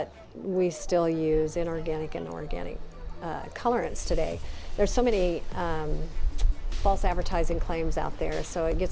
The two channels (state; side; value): identical; both; correlation 1.00